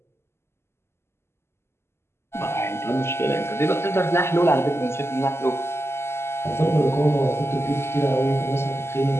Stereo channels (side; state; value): right; late; 0.12 ms